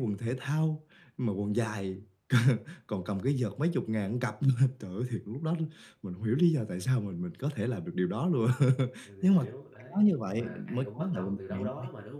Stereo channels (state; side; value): identical; both; correlation 1.00